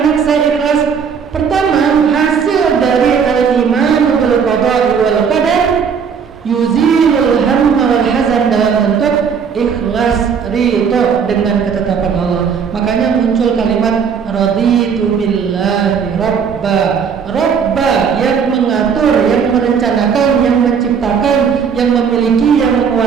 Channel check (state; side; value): quieter; left; 6.7 dB